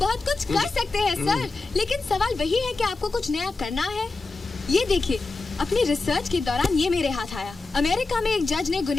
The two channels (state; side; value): quieter; right; 3.6 dB